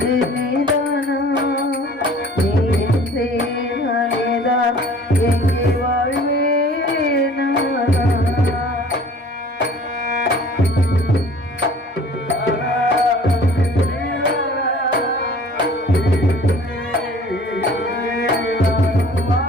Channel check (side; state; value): both; normal; correlation 0.49